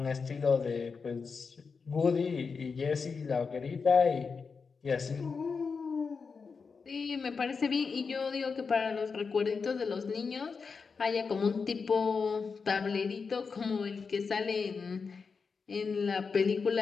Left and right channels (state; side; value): quieter; right; 5.2 dB